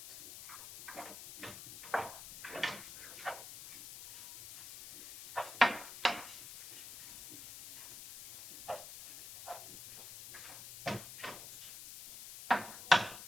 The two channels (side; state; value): left; noise; hiss, 12 dB below the sound